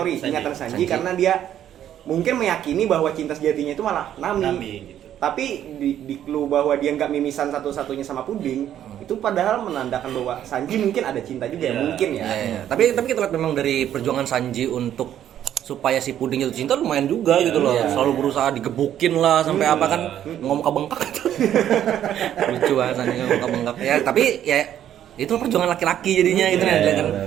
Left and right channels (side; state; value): left; quieter; 10.8 dB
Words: ingatan Sanji karena dia mungkin meyakini bahwa cinta sejatinya itu malah Nami gitu. tapi di clue bahwa dia nggak mimisan satu-satunya sama Puding itu padahal menandakan bahwa Sanji mungkin ada cinta juga ya mungkin ya. Iya. Tapi kita lihat memang dari perjuangan Sanji untuk supaya si Puding jatuh cinta lumayan juga gitu loh. Selalu berusaha digebukin lah sampai apa kan ngomong bengkak gitu. Lucu banget Sanji ngomong bengkak. Ya tapi ya itu perjuangan laki-laki jadinya gitu